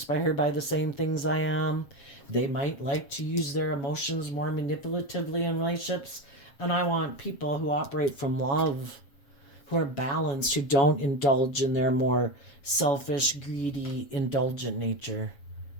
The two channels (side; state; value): right; late; 7.4 ms